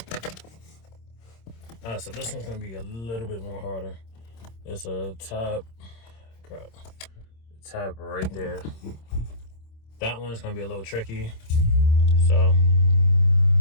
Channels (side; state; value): right; late; 26 ms